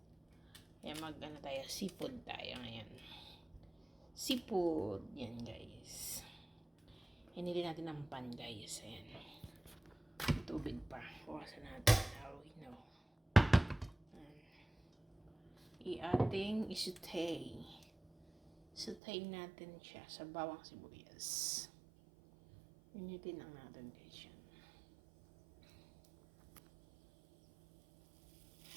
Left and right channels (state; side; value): drops out; left; at 19.0 s